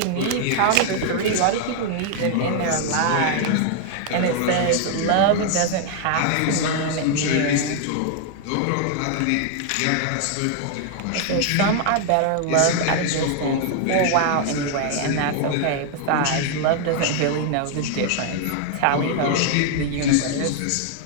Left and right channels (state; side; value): different; both; correlation 0.00